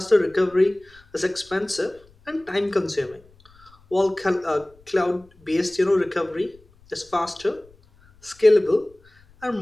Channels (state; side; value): noise; left; rumble, 29 dB below the sound